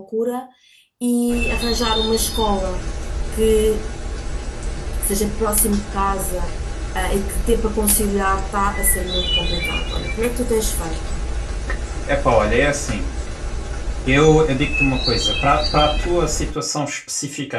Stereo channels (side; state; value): both; identical; correlation 1.00